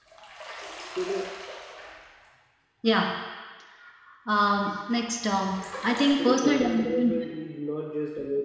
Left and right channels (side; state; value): both; identical; correlation 1.00